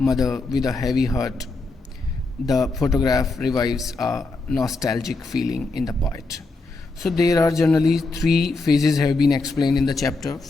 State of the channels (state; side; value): quieter; right; 3.5 dB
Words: with a heavy heart. The photograph revives a nostalgic feeling in the poet. So there are generally three phases have been explained in the chapter.